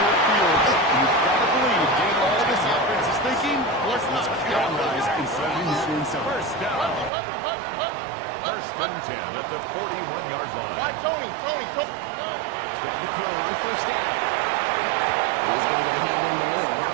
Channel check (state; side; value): drops out; left; at 7.1 s